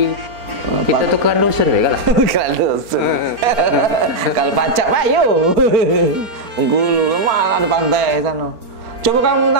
Kita tuh kan dusun ya kan? Kan dusun. Kalau pacak pak yuk. Bengkulu lemah ada pantai sana. Coba kamu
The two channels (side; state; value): left; late; 4.4 ms